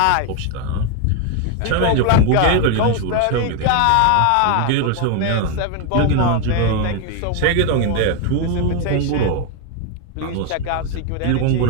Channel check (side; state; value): both; different; correlation 0.01